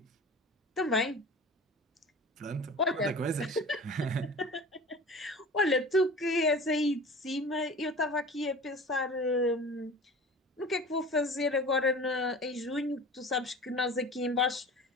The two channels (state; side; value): normal; both; correlation 0.38